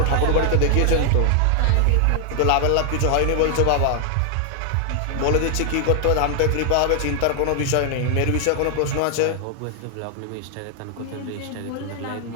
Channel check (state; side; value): different; both; correlation 0.00